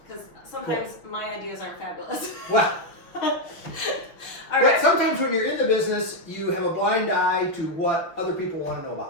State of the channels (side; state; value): right; late; 6.0 ms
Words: Because sometimes my ideas aren't fabulous. Well, All but right. sometimes when you're in the business, you have a blind eye to what other people want to know